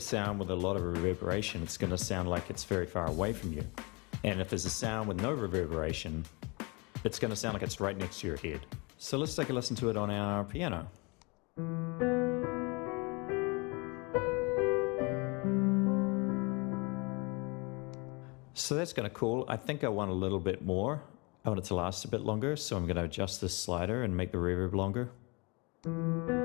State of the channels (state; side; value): quieter; right; 28.7 dB